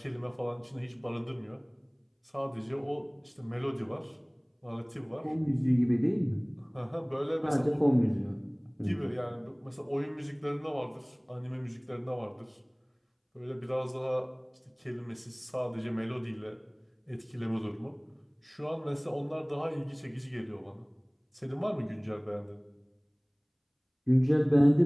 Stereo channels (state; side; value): identical; both; correlation 1.00